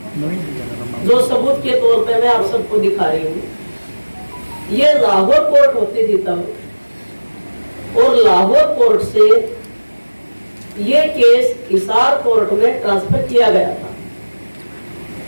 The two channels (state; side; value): inverted; both; correlation -1.00